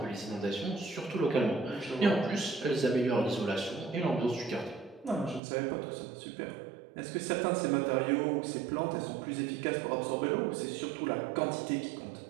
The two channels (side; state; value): left; drops out; at 5.4 s